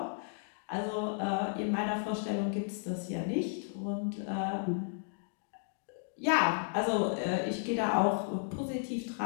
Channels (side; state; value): right; silent; digital silence